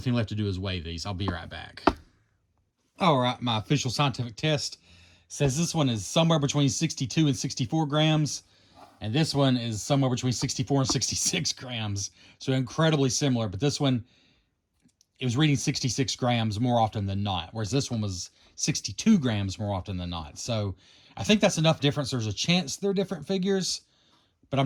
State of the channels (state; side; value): identical; both; correlation 1.00